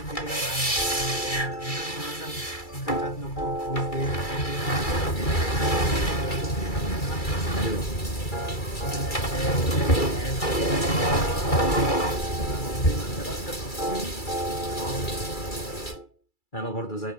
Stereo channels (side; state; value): right; late; 2.3 ms